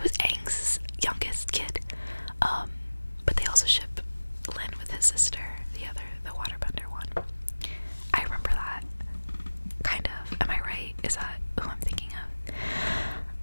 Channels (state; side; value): inverted; both; correlation -1.00